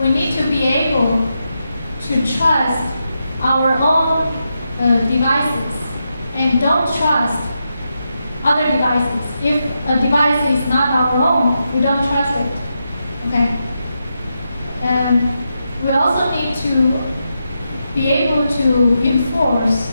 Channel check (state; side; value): inverted; both; correlation -0.86